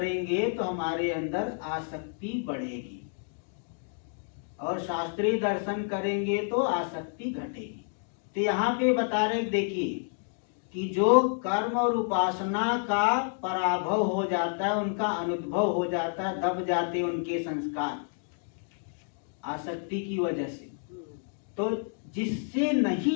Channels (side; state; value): right; silent; 58 dB below the other